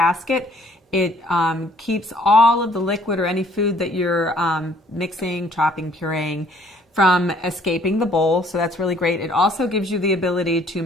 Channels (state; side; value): normal; both; correlation 0.60